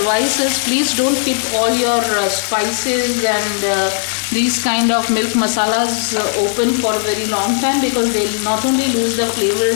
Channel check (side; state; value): right; silent; digital silence